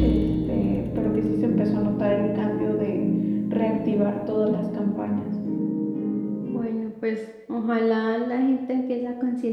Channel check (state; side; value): identical; both; correlation 1.00